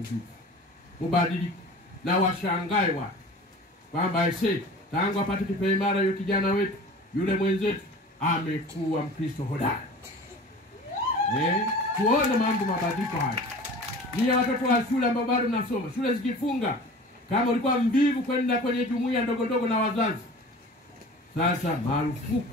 mubadilike na washangae watu kwamba tangu apate kipaimara yule kijana wetu, yule mwenzetu amekuwa Mkristo hodari. Tuone mambo mabadiliko haya. Ni watoto wa shule ambao bado mnasoma, shule zikifunga, kama ulikuwa mvivu kwenda kwenye jumuiya ndogo na wazazi, sasa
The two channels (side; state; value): both; normal; correlation 0.41